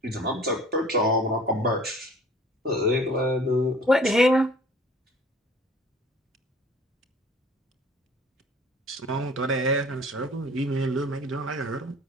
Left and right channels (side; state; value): both; normal; correlation 0.49